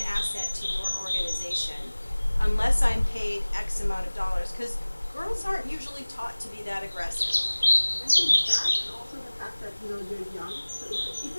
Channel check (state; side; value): inverted; both; correlation -1.00